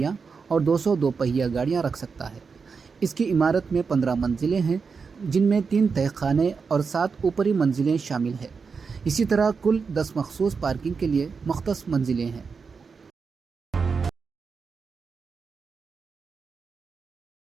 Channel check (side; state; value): left; quieter; 5.3 dB